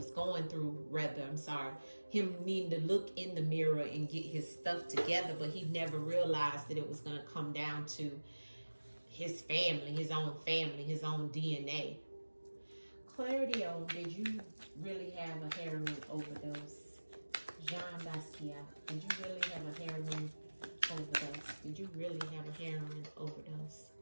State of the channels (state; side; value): inverted; both; correlation -1.00